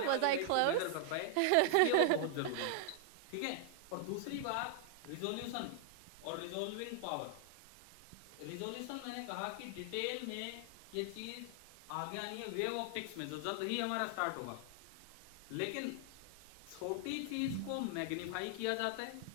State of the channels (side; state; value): both; different; correlation 0.00